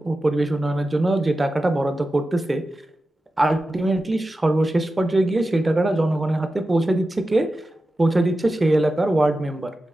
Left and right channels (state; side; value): normal; both; correlation 0.93